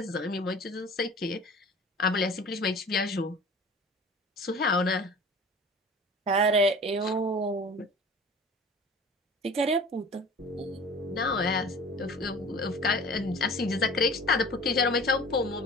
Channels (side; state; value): both; normal; correlation 0.42